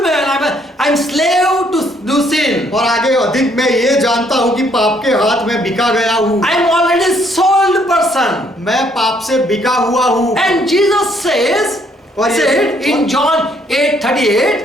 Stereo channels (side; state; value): both; normal; correlation 0.67